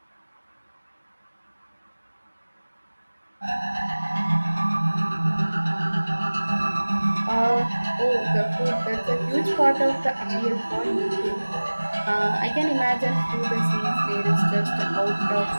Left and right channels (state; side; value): inverted; both; correlation -1.00